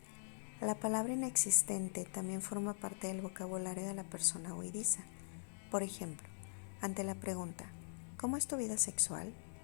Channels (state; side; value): silent; right; digital silence